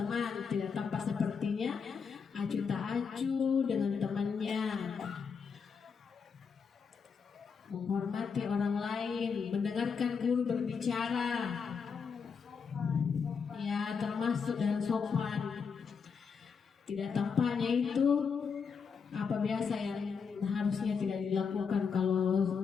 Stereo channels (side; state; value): right; quieter; 6.0 dB